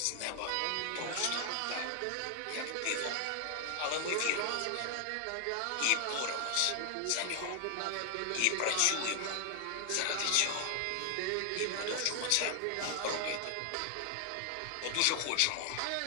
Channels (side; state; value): both; different; correlation 0.00